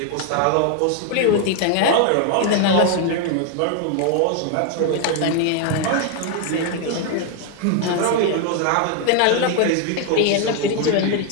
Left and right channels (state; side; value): different; both; correlation 0.00